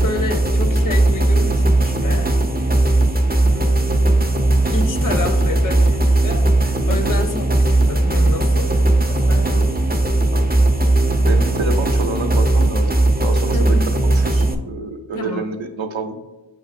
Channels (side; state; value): both; normal; correlation 0.87